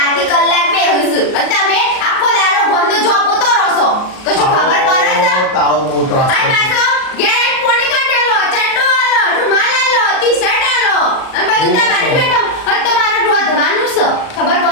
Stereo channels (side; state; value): right; late; 38 ms